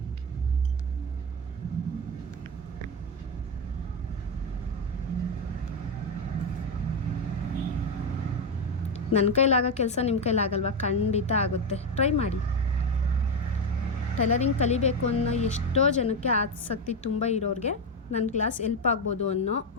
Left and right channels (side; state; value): both; normal; correlation 0.10